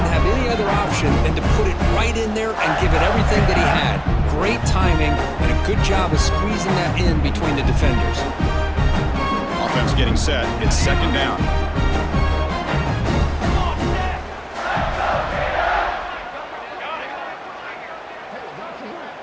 have any other option than to put it right in there and give it everything that he had. Great timing and a good job of squeezing that in between the defenders. Offense getting set. It's second down.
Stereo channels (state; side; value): identical; both; correlation 1.00